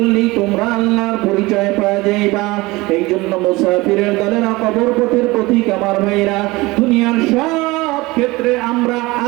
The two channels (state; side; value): quieter; left; 21.5 dB